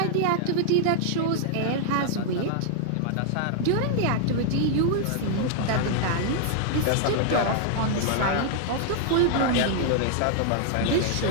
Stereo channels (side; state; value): both; different; correlation -0.01